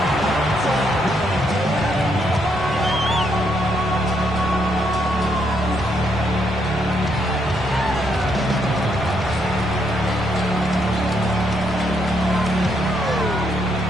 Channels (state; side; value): normal; both; correlation 0.75